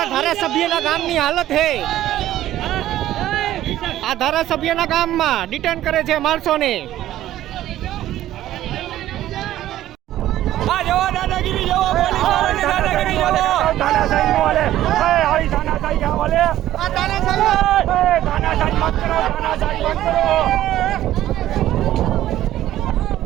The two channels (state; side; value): quieter; left; 13.5 dB